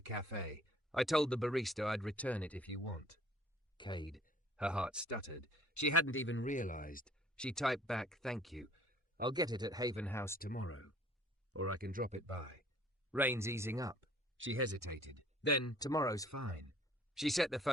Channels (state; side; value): normal; both; correlation 0.55